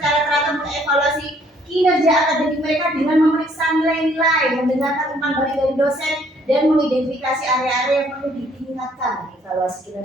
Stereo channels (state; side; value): normal; both; correlation 0.63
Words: secara teratur mengevaluasi kinerja akademik mereka dengan memeriksa nilai-nilai, mendengarkan umpan balik dari dosen, dan mengidentifikasi area-area yang perlu ditingkatkan. Evaluasi